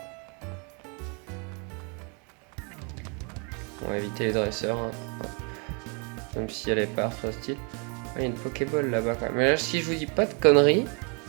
On va éviter les dresseurs. Hein. Même si elle est pas hostile. Ah, il y a une Pokéball là-bas quand même. Mais là, si je vous dis pas de conneries,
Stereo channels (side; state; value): left; quieter; 35.8 dB